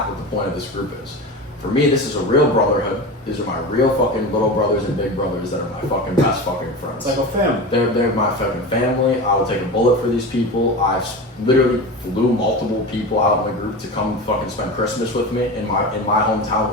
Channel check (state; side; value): normal; both; correlation 0.27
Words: what the point of this group is. For me, this is a real brotherhood. These are my real fucking little brothers and big brothers that are my fucking best fucking friends. It's like a family. They're my fucking family. I will take a bullet for these people. I've literally flew multiple people out in the group to come fucking spend Christmas with me in my